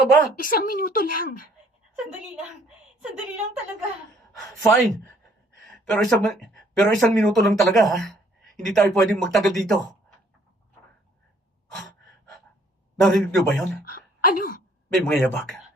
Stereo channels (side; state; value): both; normal; correlation 0.62